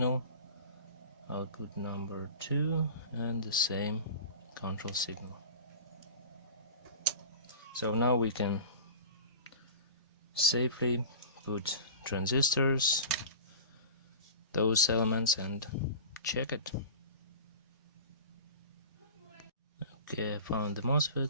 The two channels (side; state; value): both; inverted; correlation -0.35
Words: output number 2, and the same control signal. So now we can safely put transistors, those elements, and check it. Okay, I found the